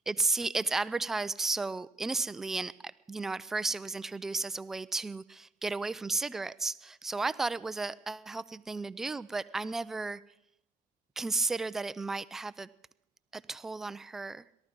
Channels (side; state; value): left; quieter; 3.0 dB